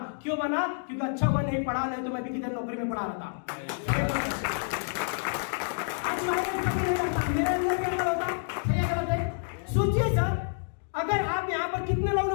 क्यों बना? क्योंकि अच्छा हुआ नहीं पढ़ा, नहीं तो मैं भी किधर नौकरी में पढ़ा रहता। मेरे अंदर क्या होता? सही गलत है? सोचिए सर, अगर आप यहाँ पर कितने लोग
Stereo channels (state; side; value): silent; right; digital silence